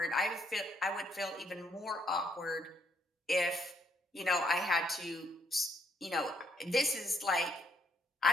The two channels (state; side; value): normal; both; correlation 0.72